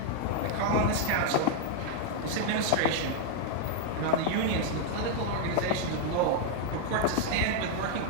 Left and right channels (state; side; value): different; both; correlation 0.00